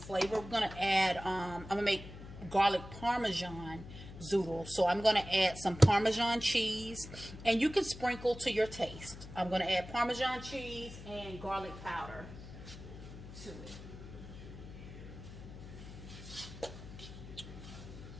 we're gonna add. I'm gonna make garlic parmesan zoodle. So I'm gonna add some Parmesan cheese, and you can sprinkle to your taste. I'm gonna add Parmesan cheese and garlic powder to it.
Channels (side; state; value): left; noise; hum, 13 dB below the sound